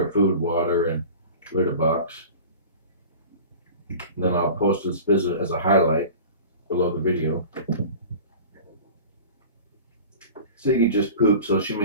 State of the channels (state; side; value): inverted; both; correlation -0.38